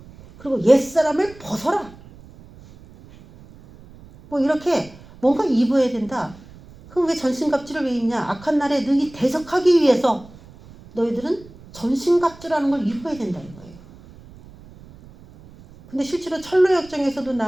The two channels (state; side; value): noise; right; rumble, 21 dB below the sound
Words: 그리고 옛사람을 벗어라. 뭐 이렇게 뭔가 입어야 된다. 그럼 왜 전신갑주를 왜 입냐? 악한 날에 능히 대적하기 위해서 너희들은 전신갑주라는 걸 입어야 된다, 이거예요. 근데 실제로 철로역정에서도